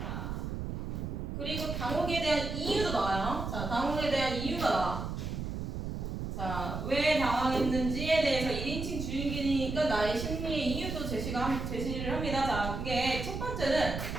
그리고 당혹에 대한 이유도 나와요. 자, 당혹에 대한 이유가 나와. 자, 왜 당황했는지에 대해서 1인칭 주인공이니까 나의 심리의 이유도 제시를 합니다. 자, 그게 첫 번째는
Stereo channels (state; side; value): noise; right; rumble, 4 dB below the sound